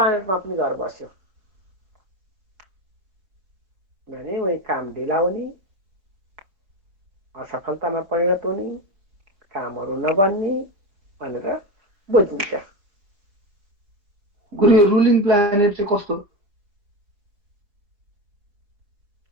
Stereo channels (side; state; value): left; late; 4.9 ms